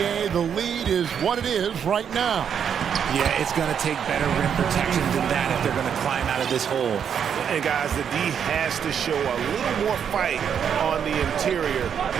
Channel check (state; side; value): quieter; left; 7.9 dB